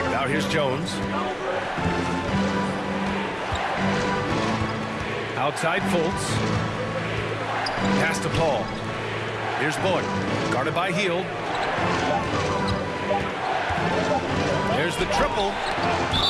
Now here's Jones. Outside Fultz. Pass to Paul. Here's Boyd. Guarded by Hield. There's the triple.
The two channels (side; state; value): both; identical; correlation 1.00